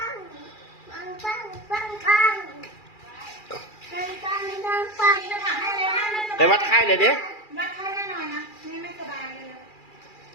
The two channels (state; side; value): late; right; 2.4 ms